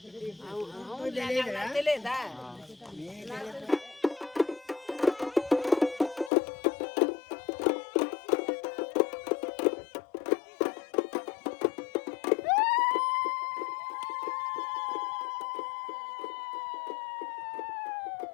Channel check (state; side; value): drops out; right; at 6.3 s